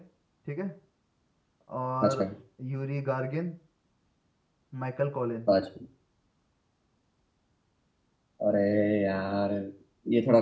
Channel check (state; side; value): identical; both; correlation 1.00